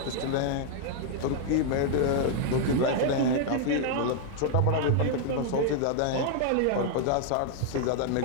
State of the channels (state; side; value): different; both; correlation 0.00